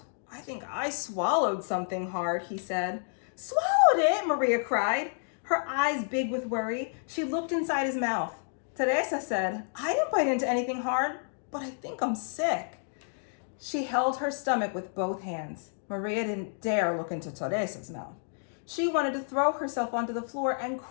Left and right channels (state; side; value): silent; right; digital silence